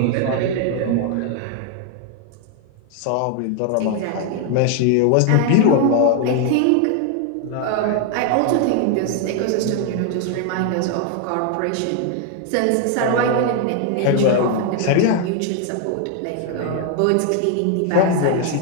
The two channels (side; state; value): both; different; correlation 0.00